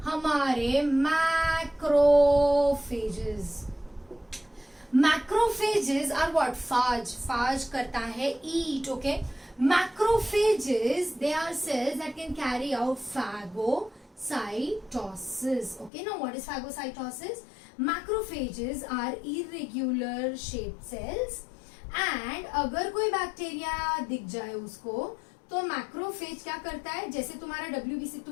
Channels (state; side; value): drops out; right; at 15.9 s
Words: हमारे macrophages. Macrophages are what, phage करता है eat, okay. Macrophages they are cells that can carry out phagocytosis, okay। Now what is phagocytosis? Macrophages are irregular shaped cells and अगर कोई बैक्टीरिया दिख जाए उसको तो मैक्रोफेज क्या करता है, जैसे तुम्हारा WBC